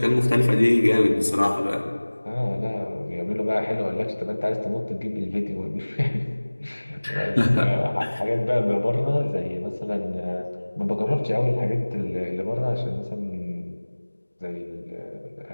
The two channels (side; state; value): both; inverted; correlation -1.00